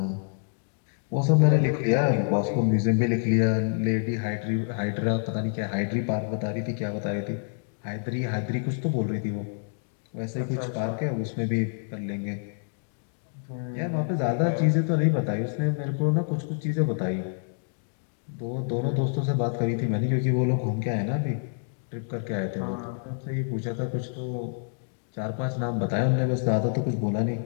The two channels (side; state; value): right; silent; digital silence